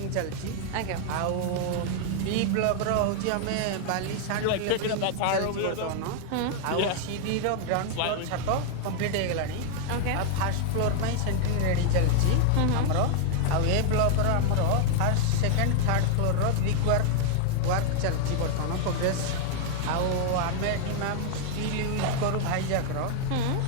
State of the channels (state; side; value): different; both; correlation 0.00